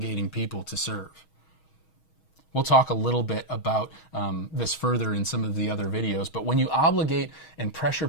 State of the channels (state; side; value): late; right; 6.3 ms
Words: people to serve. We'll talk a little bit about this further in some of the other videos, but when you obligate and pressure